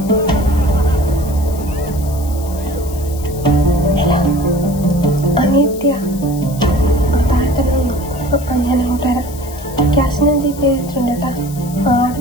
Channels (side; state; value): left; noise; hiss, 17 dB below the sound